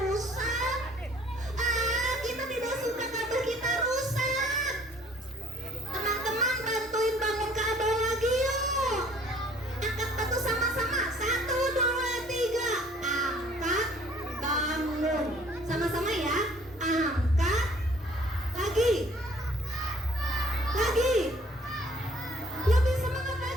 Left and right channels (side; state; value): both; normal; correlation 0.57